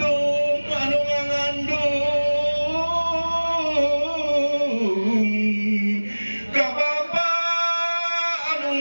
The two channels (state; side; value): inverted; both; correlation -1.00